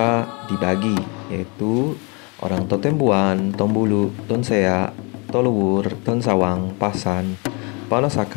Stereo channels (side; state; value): right; quieter; 31.1 dB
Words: dibagi, yaitu orang Totembuan, Tombulu, Tonsea, Toluwur, Tonsawang, Pasan,